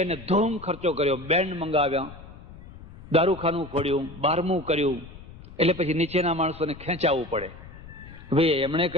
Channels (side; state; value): left; noise; rumble, 17 dB below the sound